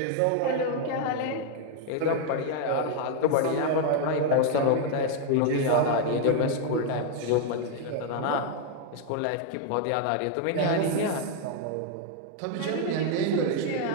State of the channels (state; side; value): different; both; correlation 0.00